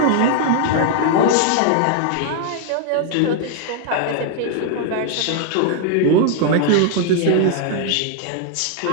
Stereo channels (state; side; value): different; both; correlation 0.00